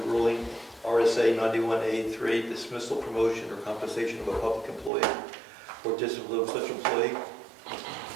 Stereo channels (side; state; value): left; drops out; at 4.9 s